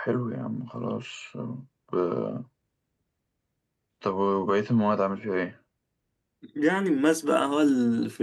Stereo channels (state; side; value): identical; both; correlation 1.00